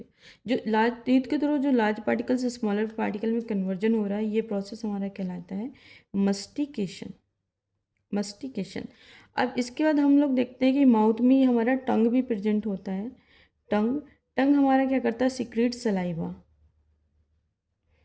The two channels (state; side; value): identical; both; correlation 1.00